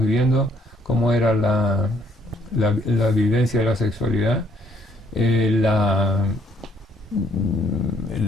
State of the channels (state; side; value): normal; both; correlation 0.67